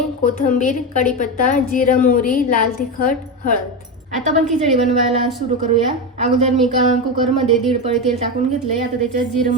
कोथिंबीर, कढीपत्ता, जिरं, मोहरी, लाल तिखट, हळद। आता आपण खिचडी बनवायला सुरू करूया। अगोदर मी कुकरमध्ये 1.5 पळी तेल टाकून घेतलंय। आता त्याच्यात जिरं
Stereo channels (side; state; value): both; normal; correlation 0.15